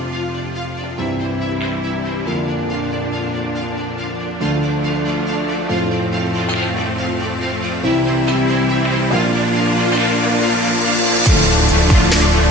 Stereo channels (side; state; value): both; normal; correlation 0.53